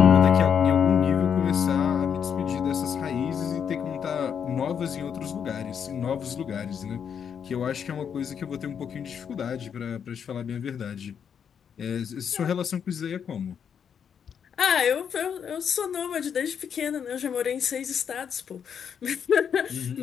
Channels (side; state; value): right; quieter; 7.6 dB